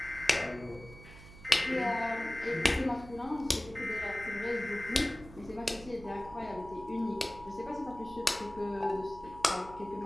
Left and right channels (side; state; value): right; noise; hum, 17 dB below the sound